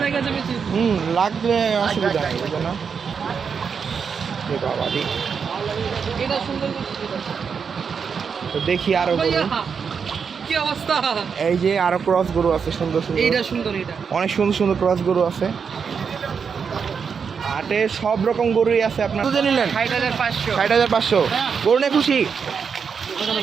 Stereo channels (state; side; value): quieter; left; 6.2 dB